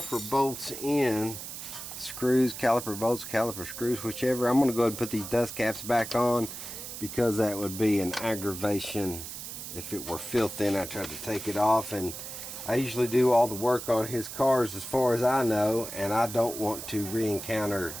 bolts in. Screws, caliper bolts, caliper screws, whichever. I'm going to go ahead and put these dust caps back on because that would be an aggravation if it were filthy and I tried to take it off. And I usually do all the work on his cars as far as I know, and I don't want to re-encounter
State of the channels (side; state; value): right; noise; hiss, 9 dB below the sound